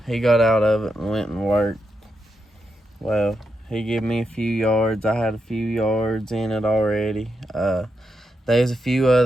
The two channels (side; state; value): both; normal; correlation 0.84